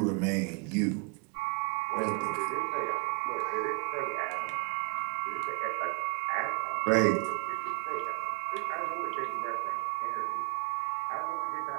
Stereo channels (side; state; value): left; quieter; 35.7 dB